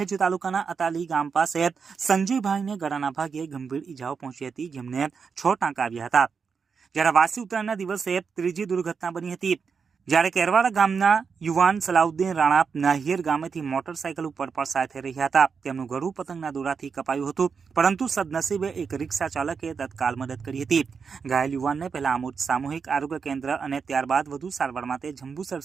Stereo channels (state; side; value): quieter; left; 5.7 dB